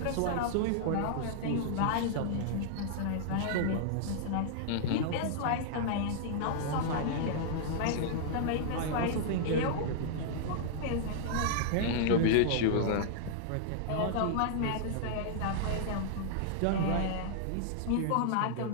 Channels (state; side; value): different; both; correlation -0.01